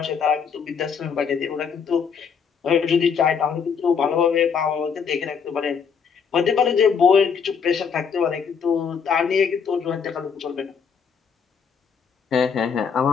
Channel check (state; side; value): quieter; right; 6.4 dB